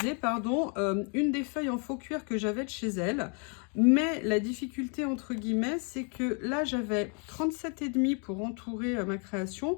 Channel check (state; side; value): quieter; right; 38.8 dB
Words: pardon, une des feuilles en faux cuir que j'avais de chez elle. Mais la difficulté, entre guillemets, c'est que là, j'avais 37,5 pour entourer ma création.